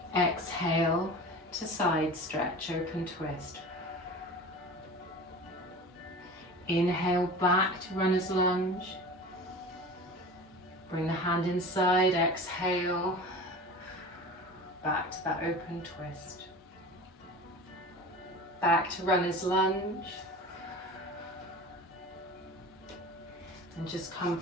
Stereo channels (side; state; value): both; normal; correlation 0.36